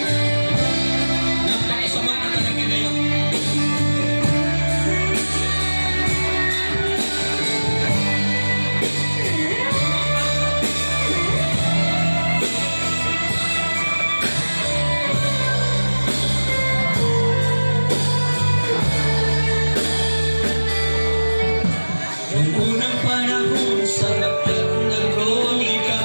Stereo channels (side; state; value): both; inverted; correlation -1.00